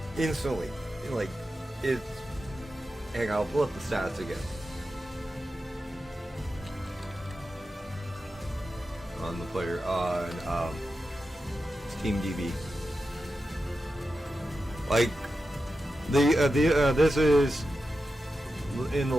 instantly. Like it's. Hang on, I'll pull up the stats again. On the player on Steam DB. Like this is in the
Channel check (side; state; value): both; normal; correlation 0.91